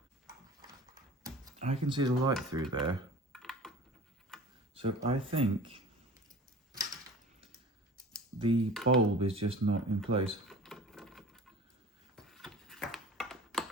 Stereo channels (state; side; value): normal; both; correlation 0.41